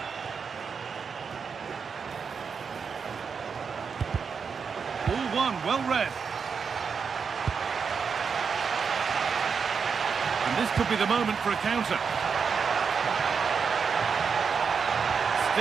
Ball one, well read. And this could be the moment for a counter.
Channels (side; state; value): left; quieter; 5.9 dB